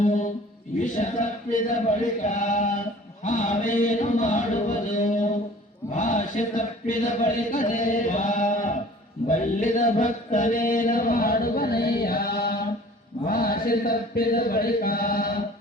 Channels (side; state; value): both; normal; correlation 0.48